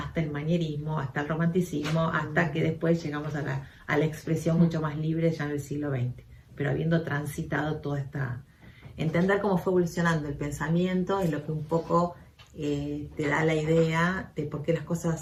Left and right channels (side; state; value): both; identical; correlation 1.00